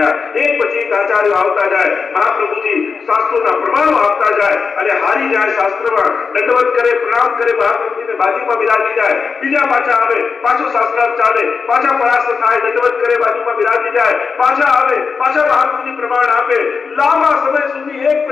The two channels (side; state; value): right; quieter; 5.3 dB